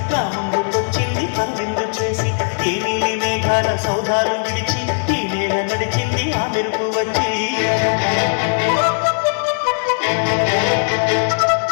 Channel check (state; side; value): silent; right; 66 dB below the other